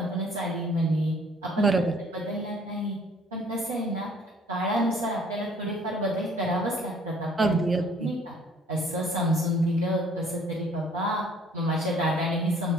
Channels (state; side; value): normal; both; correlation 0.57